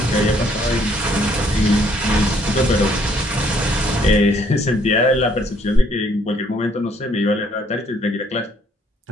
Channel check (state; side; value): normal; both; correlation 0.65